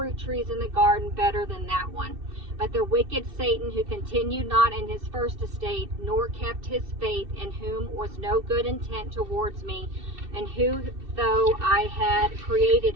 trees in the garden better than that one. But the wicked Satan, who continued not in his first estate, nor kept his faith, in whom was no good intent towards me, and who, though I had created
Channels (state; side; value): late; left; 2.6 ms